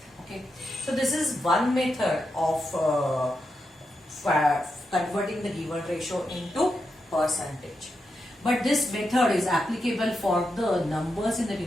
So this is one method of converting the given ratio into percentage. But this method is applicable for the numbers in the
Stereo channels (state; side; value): normal; both; correlation 0.86